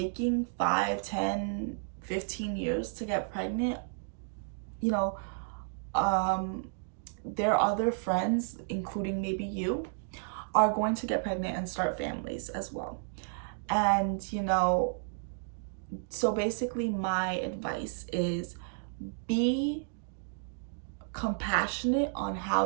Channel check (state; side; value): silent; left; digital silence